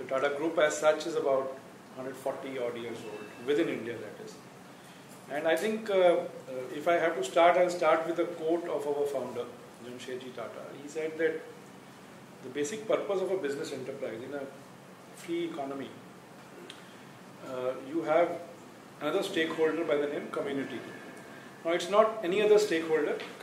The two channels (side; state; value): both; identical; correlation 1.00